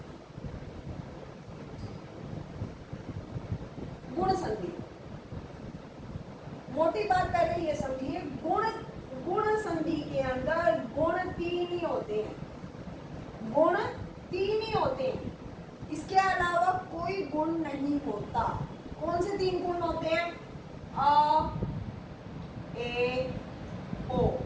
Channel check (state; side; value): identical; both; correlation 1.00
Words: गुण संधि, मोटी बात पहले ये समझिए, गुण संधि के अंदर गुण तीन ही होते हैं। गुण तीन ही होते हैं, इसके अलावा कोई गुण नहीं होता। कौन से तीन गुण होते हैं? अ, ए, ओ।